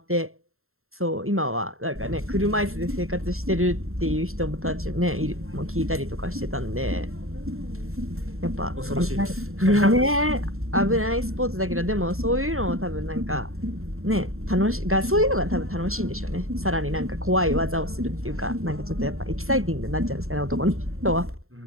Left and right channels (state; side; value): late; left; 0.62 ms